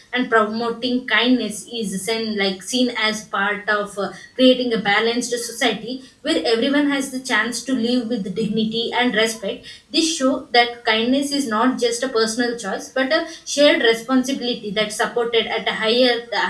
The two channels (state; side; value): identical; both; correlation 1.00